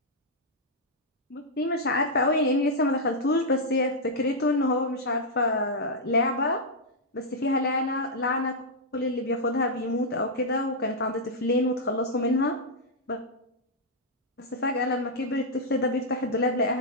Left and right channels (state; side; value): normal; both; correlation -0.06